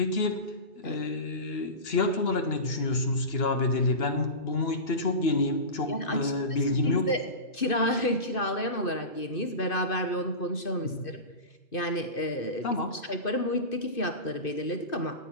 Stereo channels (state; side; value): late; right; 2.6 ms